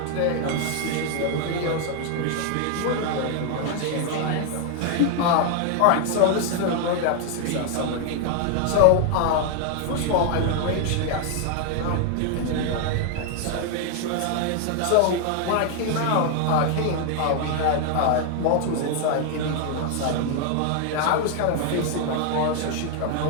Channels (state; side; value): different; both; correlation 0.00